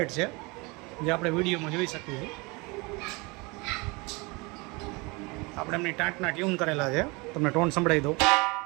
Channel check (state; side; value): quieter; left; 26.7 dB